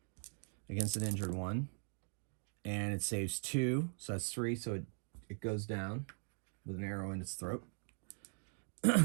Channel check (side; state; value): left; silent; 51 dB below the other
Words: against an injured one. And it saves 2. So that's 3. So it goes down with an arrow in its throat.